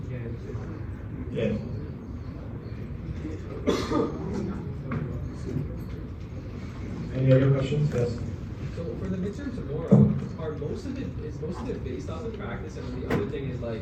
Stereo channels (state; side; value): identical; both; correlation 1.00